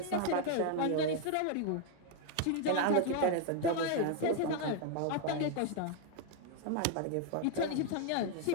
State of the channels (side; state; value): both; different; correlation 0.00